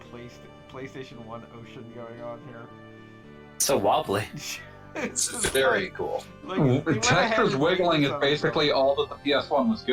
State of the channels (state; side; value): identical; both; correlation 1.00